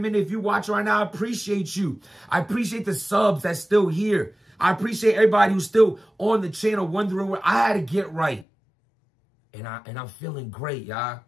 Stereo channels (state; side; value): drops out; right; at 8.5 s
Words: If you watch right now, I appreciate you. I appreciate the subs that's still here. I appreciate everybody who's still on the channel wondering where I had to get right. And I'm feeling great, y'all.